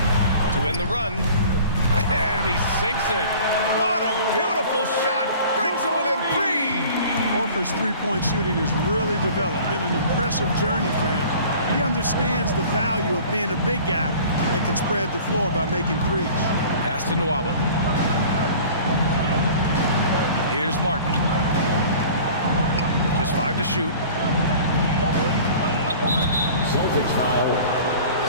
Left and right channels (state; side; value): inverted; both; correlation -0.45